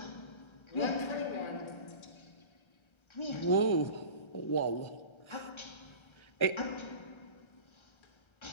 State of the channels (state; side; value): late; right; 1.3 ms